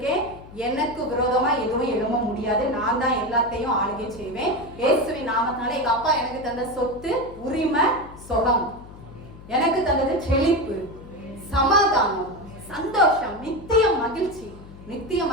எனக்கு விரோதமா எதுவும் எழும்ப முடியாது, நான் தான் எல்லாத்தையும் ஆளுகை செய்வேன். இயேசுவின் நாமத்தினால எங்க அப்பா எனக்கு தந்த சொத்து, உரிமை, சுகம், எனக்கு தந்தது செழிப்பு, சமாதானம், சந்தோஷம், நித்திய மகிழ்ச்சி. நித்திய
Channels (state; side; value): noise; left; hum, 18 dB below the sound